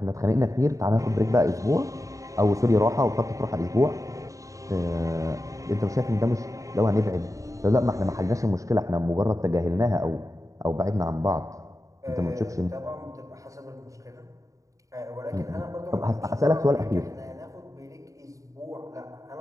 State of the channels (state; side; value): late; left; 0.16 ms